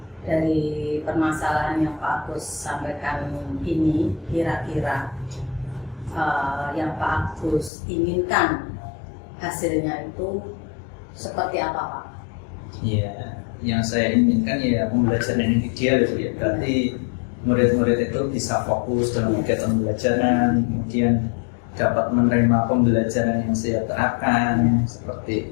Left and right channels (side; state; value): right; drops out; at 7.7 s